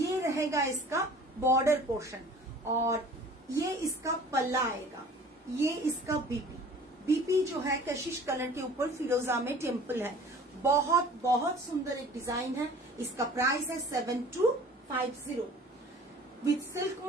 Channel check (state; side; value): normal; both; correlation 0.47